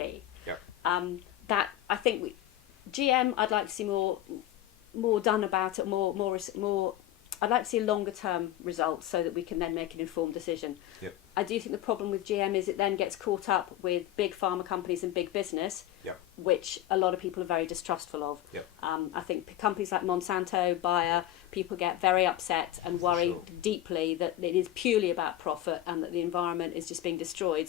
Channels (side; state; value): right; quieter; 13.2 dB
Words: Yep. That I think GM, I'd like to see more done about it, more. I'd like to see longer term results so that we can then make an informed decision. Yep. I do think the problem with GM is it then gets caught up with big pharma companies and big business, which a lot of people are very distrustful of. Yep. I think companies like Monsanto, Bayer, people get very upset and worry deeply that it is purely about profit and that the environment is just being destroyed